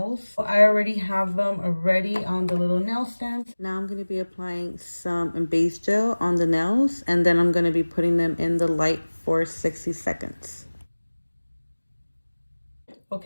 I already have them ready on the little nail stand. Now I'm going to be applying some base gel on the nails, and then I'm going to be putting them in the light for 60 seconds.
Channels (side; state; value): both; inverted; correlation -1.00